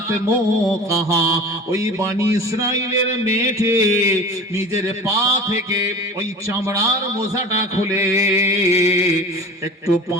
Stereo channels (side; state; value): both; normal; correlation 0.38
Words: موقها। ওই বনি ইসরাইলের মেয়েটি নিজের পা থেকে ওই চামড়ার মোজাটা খুলে একটু